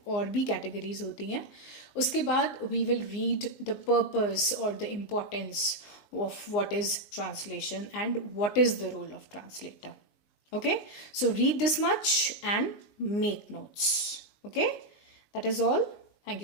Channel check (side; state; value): right; late; 19 ms